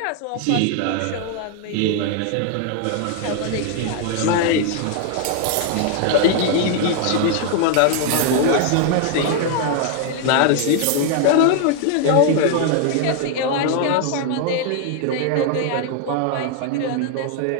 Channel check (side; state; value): both; different; correlation 0.00